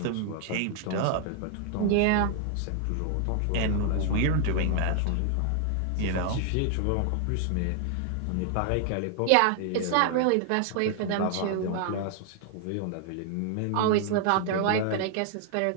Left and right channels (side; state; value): both; different; correlation 0.00